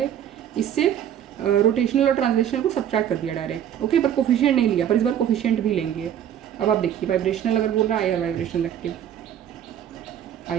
इससे रोटेशनल और ट्रांसलेशनल को सब्ट्रैक्ट कर दिया डायरेक्ट, ओके। पर कोफिशिएंट नहीं लिया, पर इस बार कोफिशिएंट भी लेंगे। अब आप देखिए वाइब्रेशनल अगर बोल रहा है IR vibrational active,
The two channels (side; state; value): left; quieter; 10.0 dB